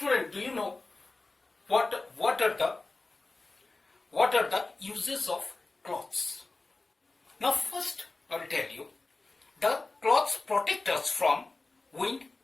do you know what are the uses of cloths? Now first I will tell you, the cloths protect us from wind,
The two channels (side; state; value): right; quieter; 3.4 dB